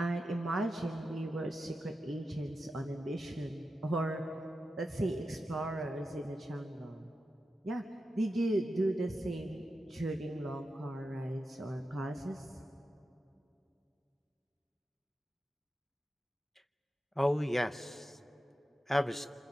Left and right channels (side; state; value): both; normal; correlation 0.90